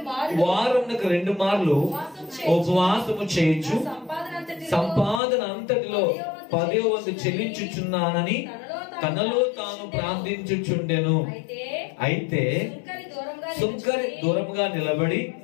వారమునకు 2 మార్లు ఉపవాసము చేయొచ్చు, సంపాదన అంతటిలో 10వ వంతు చెల్లించుచున్నానని తనలో తాను ప్రార్థించుచుండెను. అయితే సుంకరి దూరంగా నిలబడి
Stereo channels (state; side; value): drops out; right; at 5.2 s